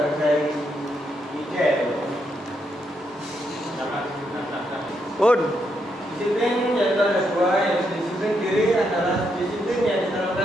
ide. Disiplin yang ada dua. Yang disiplin diri adalah disiplin yang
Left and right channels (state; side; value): normal; both; correlation 0.79